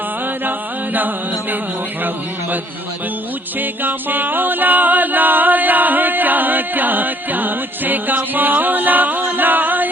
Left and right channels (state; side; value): normal; both; correlation 0.61